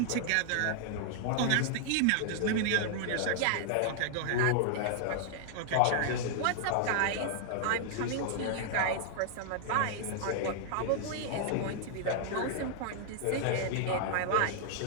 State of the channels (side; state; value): both; different; correlation -0.01